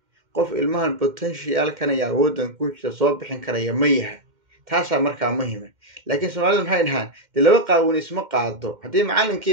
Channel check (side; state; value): left; late; 2.1 ms